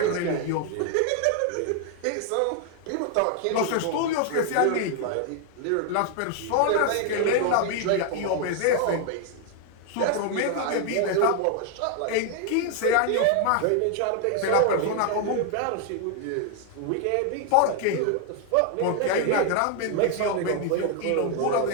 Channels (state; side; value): different; both; correlation 0.00